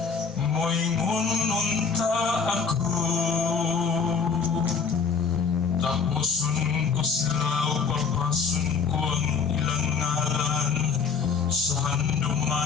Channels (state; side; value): quieter; right; 5.6 dB